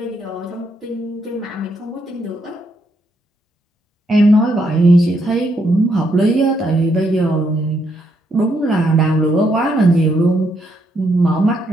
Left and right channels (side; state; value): both; normal; correlation 0.76